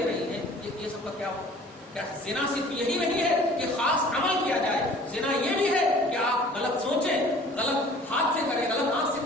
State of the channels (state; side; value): normal; both; correlation 0.49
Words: رہی ہیں، یہ سب کا کیا ہو؟ کیا زنا صرف یہی نہیں ہے کہ خاص عمل کیا جائے، زنا یہ بھی ہے کہ آپ غلط سوچیں، غلط ہاتھ سے کریں، غلط آنکھ سے